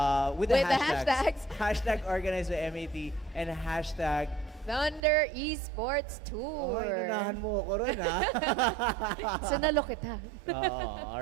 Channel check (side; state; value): left; drops out; at 5.0 s